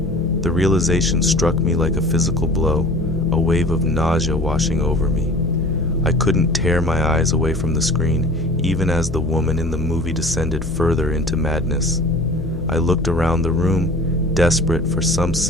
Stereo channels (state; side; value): noise; left; hum, 9 dB below the sound